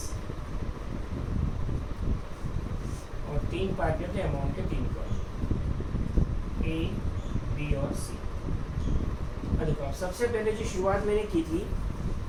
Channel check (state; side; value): identical; both; correlation 1.00